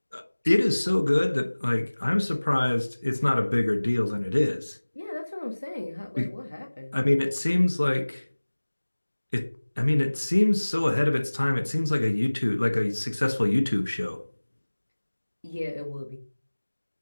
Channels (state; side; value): inverted; both; correlation -1.00